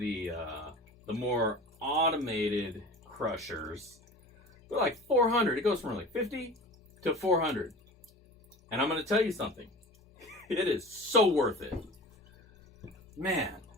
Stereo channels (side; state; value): both; normal; correlation 0.37